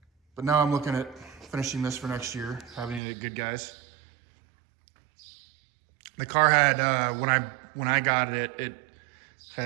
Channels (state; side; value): drops out; left; at 3.0 s